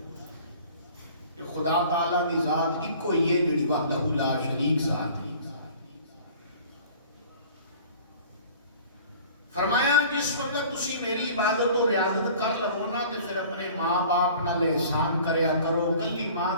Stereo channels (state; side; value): inverted; both; correlation -0.47